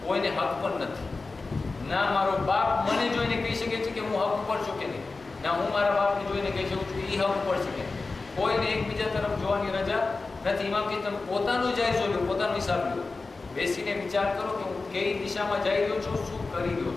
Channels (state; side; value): quieter; right; 3.8 dB